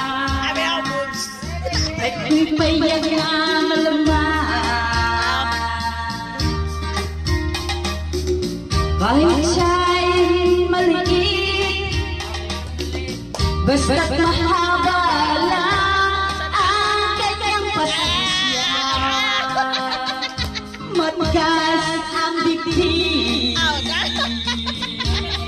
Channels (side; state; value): both; identical; correlation 1.00